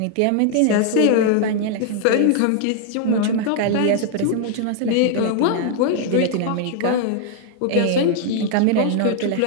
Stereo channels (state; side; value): different; both; correlation 0.00